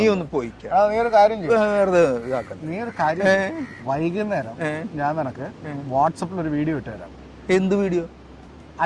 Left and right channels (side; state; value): both; identical; correlation 1.00